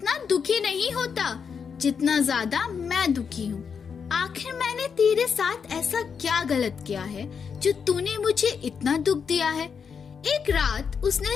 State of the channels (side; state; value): right; quieter; 6.4 dB